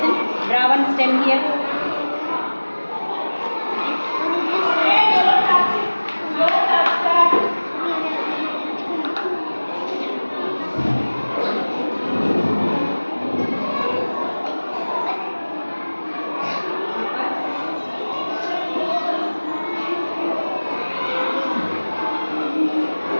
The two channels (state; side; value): inverted; both; correlation -1.00